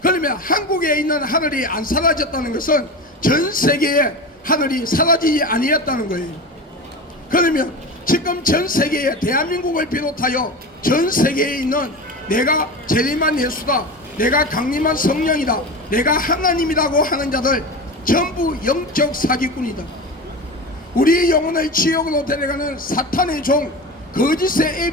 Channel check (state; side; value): normal; both; correlation 0.27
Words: 그러면 한국에 있는 하늘이 안 사라졌다는 것은 전 세계의 하늘이 사라지지 아니었다는 거예요. 그러면 지금 전 세계에 대한민국을 비롯하여 전 세계에 있는 내가 재림한 예수다, 내가 강림한 성령이다, 내가 하나님이라고 하는 자들 전부 영적 사기꾼이다. 우리 영혼을 지옥으로 데려가는 사탄의 종, 거짓의